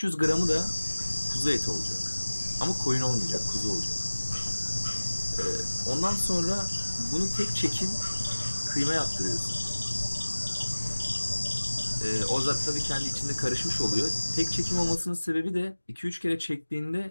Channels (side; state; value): both; inverted; correlation -1.00